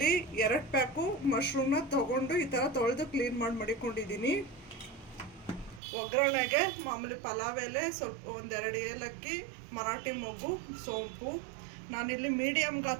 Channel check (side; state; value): left; drops out; at 5.8 s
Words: 2 ಪ್ಯಾಕು ಮಶ್ರೂಮ್ನ ತೊಗೊಂಡು ಈ ಥರ ತೊಳೆದು ಕ್ಲೀನ್ ಮಾಡಿ ಮಡಿಕೊಂಡಿದ್ದೀನಿ. ಒಗ್ಗರಣೆಗೆ ಮಾಮೂಲಿ ಪಲಾವ್ ಎಲೆ, ಸ್ವಲ್ಪ 1-2 ಏಲಕ್ಕಿ, ಮರಾಠಿ ಮೊಗ್ಗು, ಸೋಂಪು. ನಾನಿಲ್ಲಿ ಮೀಡಿಯಮ್